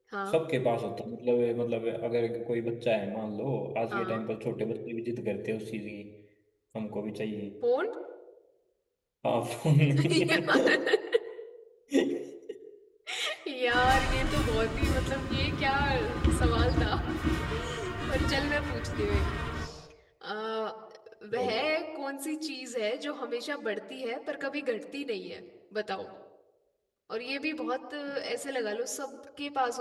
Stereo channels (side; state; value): both; identical; correlation 1.00